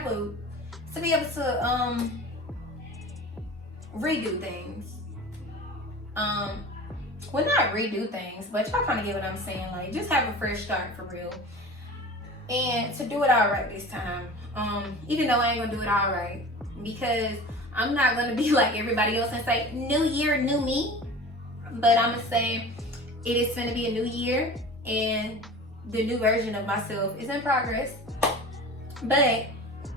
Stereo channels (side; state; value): both; normal; correlation 0.37